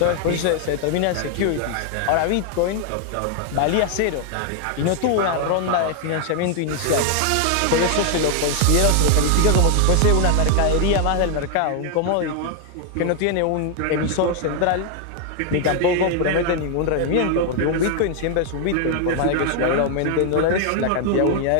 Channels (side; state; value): both; different; correlation 0.00